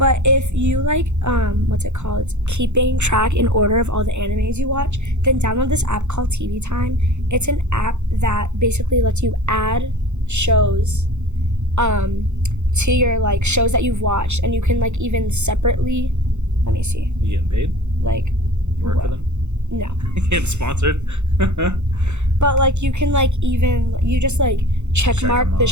if you like, what's it called? Keeping track in order of all the animes you watch, then download this app called TV Time. It's an app that basically lets you add shows, to your like shows that you've watched, and you can like even separately. Let me see. You getting paid? Like. You work for them? No. Get sponsored. But like you can like even you just like check mark the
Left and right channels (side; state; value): left; late; 0.83 ms